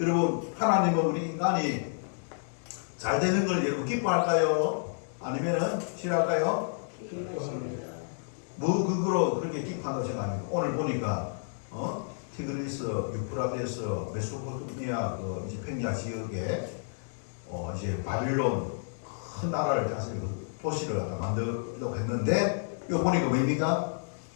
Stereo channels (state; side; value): silent; right; digital silence